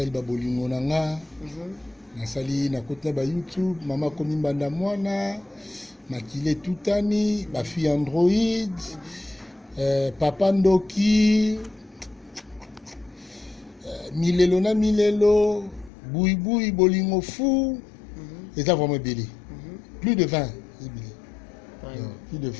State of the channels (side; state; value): right; drops out; at 15.9 s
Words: ba bolingo nanga na sali na kota ba YouTube mama komi mbanda mwana makile tutani ba fille Android papa Ndoki milelo boui bolingo fou et ça vraiment belé plus de 20 plus de